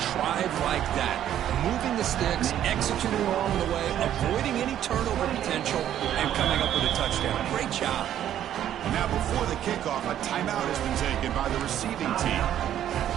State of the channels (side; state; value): left; quieter; 11.0 dB